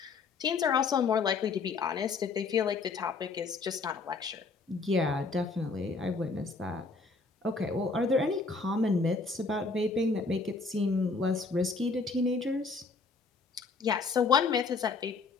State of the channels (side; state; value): right; quieter; 4.2 dB